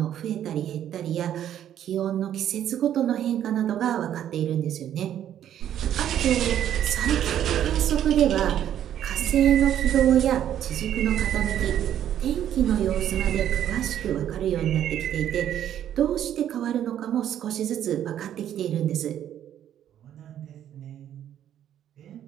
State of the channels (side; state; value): left; quieter; 10.6 dB